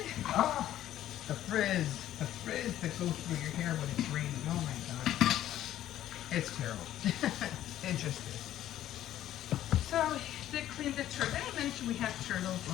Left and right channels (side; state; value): right; quieter; 12.6 dB